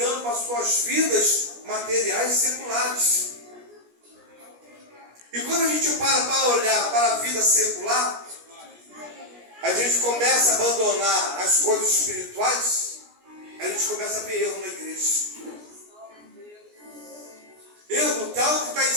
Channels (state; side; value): late; left; 17 ms